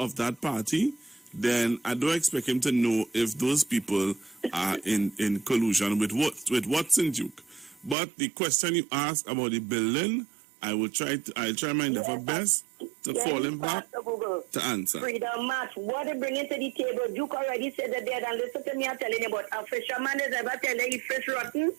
that party, then I don't expect him to know if those people are in collusion with Watson Duke. But the question you asked about the building, I'll try my level best to call him back to answer. Freedom March, what they bring to the table? Duke already said that they had, and listen to me, I'm telling you about a fisherman is ever telling you fish rotten.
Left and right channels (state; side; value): drops out; left; at 8.0 s